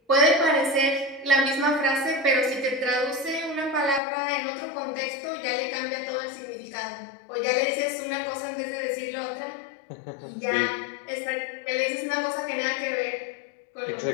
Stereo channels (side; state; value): right; drops out; at 4.0 s